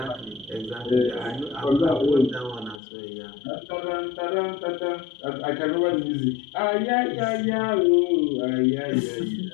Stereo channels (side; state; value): right; drops out; at 2.8 s